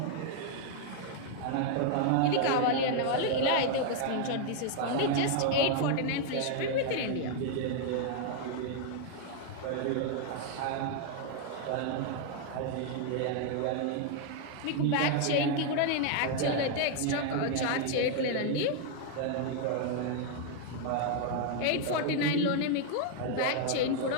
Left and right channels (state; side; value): different; both; correlation 0.00